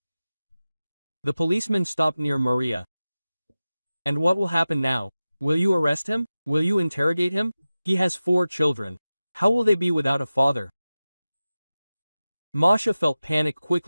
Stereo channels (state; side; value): inverted; both; correlation -0.95